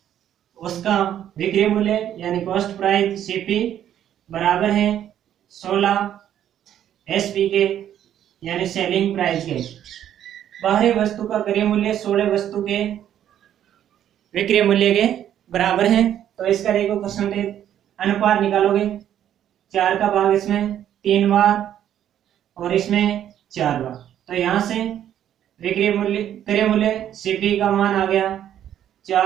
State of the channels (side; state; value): left; quieter; 10.6 dB